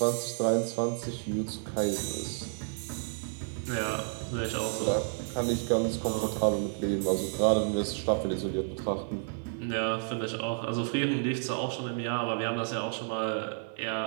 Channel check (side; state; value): left; silent; 57 dB below the other